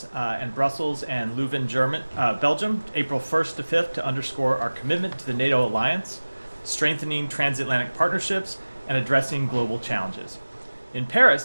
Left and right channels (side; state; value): both; inverted; correlation -1.00